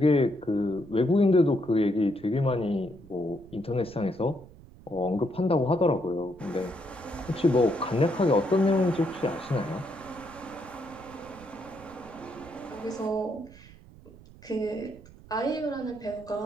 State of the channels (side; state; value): right; noise; rumble, 21 dB below the sound